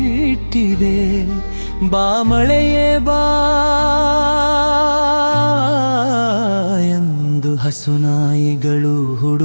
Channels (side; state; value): both; inverted; correlation -1.00